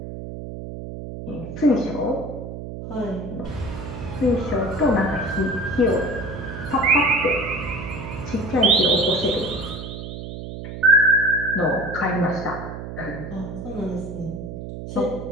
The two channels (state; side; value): noise; right; hum, 9 dB below the sound